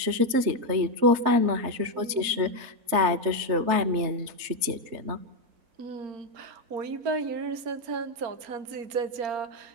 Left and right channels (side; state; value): left; late; 3.3 ms